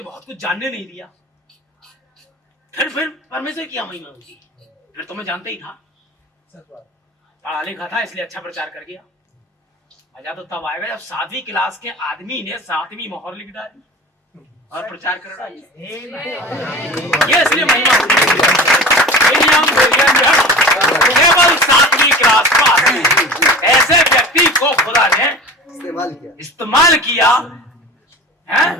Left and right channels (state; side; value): normal; both; correlation 0.36